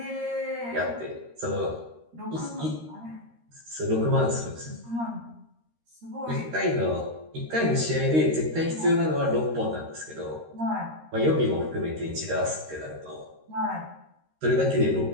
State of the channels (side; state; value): left; late; 13 ms